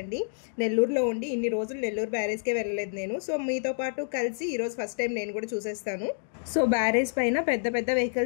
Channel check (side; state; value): right; silent; digital silence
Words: నెల్లూరులో ఉండి ఇన్ని రోజులు నెల్లూరు బ్యారేజ్కే వెళ్ళలేదు నేను. సో మీతో పాటు కలిసి ఈరోజు ఫస్ట్ టైం నేను కూడా చూసేస్తాను. సో బ్యారేజ్ పైన పెద్ద పెద్ద